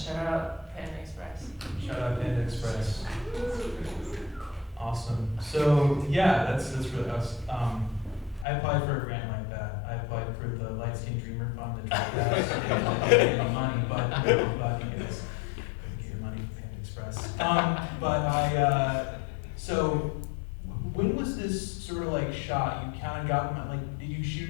out Panda Express. Shout out Panda Express. Awesome. So yeah, that's really awesome. I applied for a grant like that. I applied for the Light Skin Dreamer Fund, the Dream Fest. I didn't get any money, but you guys get your money from Panda Express. So when was this sort of like shot? You kind of got them, like, did you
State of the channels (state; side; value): drops out; right; at 8.5 s